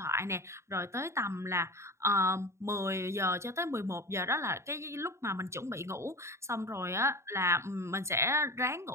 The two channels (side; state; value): left; late; 0.13 ms